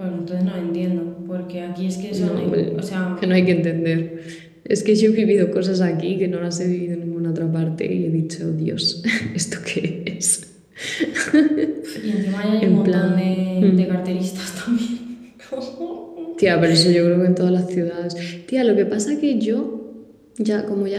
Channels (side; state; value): both; identical; correlation 1.00